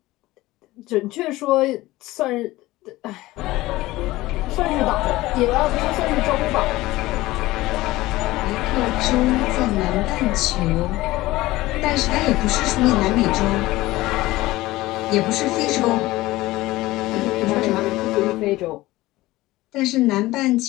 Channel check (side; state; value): right; quieter; 18.2 dB